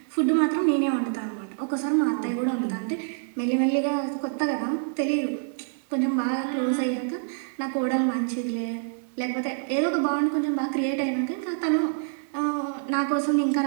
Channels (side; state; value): left; silent; 61 dB below the other